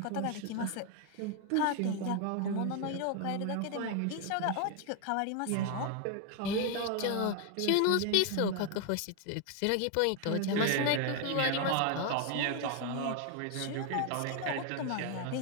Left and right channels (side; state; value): both; different; correlation 0.01